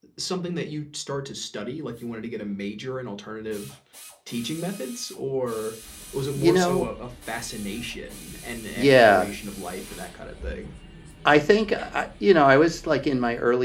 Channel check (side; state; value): both; identical; correlation 1.00